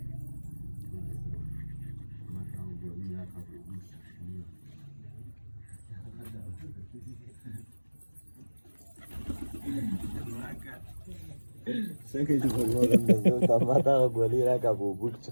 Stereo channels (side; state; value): both; inverted; correlation -1.00